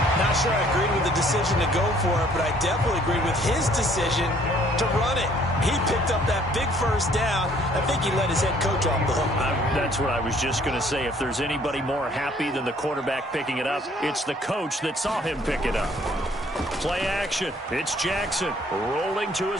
Not sure I agreed with the decision to go for it, but I definitely agreed with his decision to run it. He picked up that big first down. I think he let his head coach off the hook. That's what I was just going to say. If there's anybody more happy than the quarterback picking it up, it's the coach that saw him pick it up. Play action. It's Jackson rolling to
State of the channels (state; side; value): normal; both; correlation 0.60